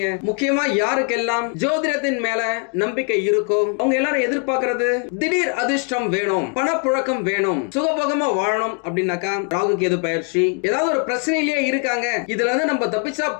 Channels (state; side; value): quieter; right; 38.6 dB